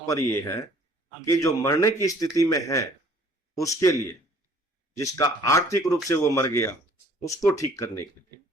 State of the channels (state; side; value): normal; both; correlation 0.56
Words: यह है कि जो मरने की स्थिति में है उसके लिए, जिसका आर्थिक रूप से वो मर गया उसको ठीक करने के लिए,